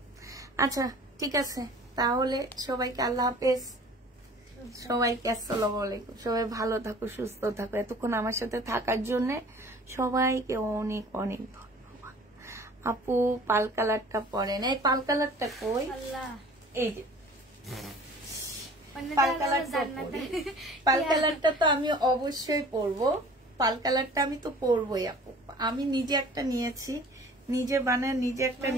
আচ্ছা ঠিক আছে, তাহলে সবাইকে আল্লাহ হাফেজ, সবাইকে আসসালামু আলাইকুম। সবাই ভালো থাকো, সুস্থ থাকো। এতক্ষণ আমার সাথে থাকার জন্য সবাইকে অনেক অনেক ধন্যবাদ। আপু পাল কালারটা পরে না, এই পাল কালারটা কই? এই যে পাল কালারটা তো আমি অবশ্যই পরবো, পাল কালারটা আমি তো পরবোই আপু। আমি নিজে একটা নিয়েছি, নিজে বানায় নিজে একটা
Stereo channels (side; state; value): both; normal; correlation 0.47